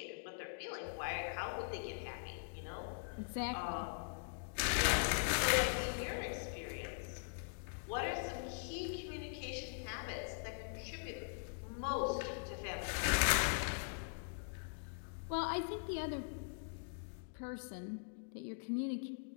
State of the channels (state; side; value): silent; right; digital silence